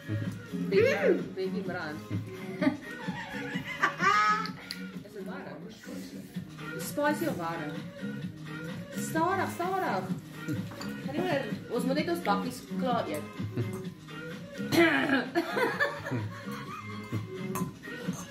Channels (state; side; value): identical; both; correlation 1.00